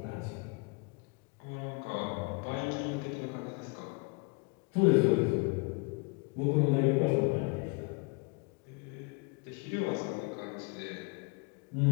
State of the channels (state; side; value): quieter; right; 30.5 dB